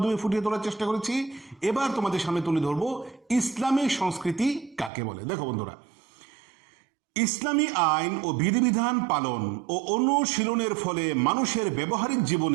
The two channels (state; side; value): drops out; left; at 4.9 s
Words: ফুটিয়ে তোলার চেষ্টা করেছি। এবার তোমাদের সামনে তুলে ধরবো ইসলামী সংস্কৃতি কাকে বলে। দেখো বন্ধুরা, ইসলামী আইন ও বিধিবিধান পালন ও অনুশীলনের ফলে মানুষের ব্যবহারিক